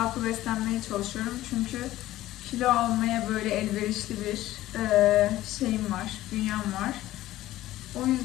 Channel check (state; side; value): quieter; right; 15.2 dB